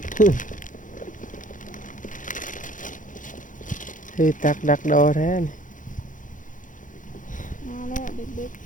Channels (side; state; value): right; late; 0.38 ms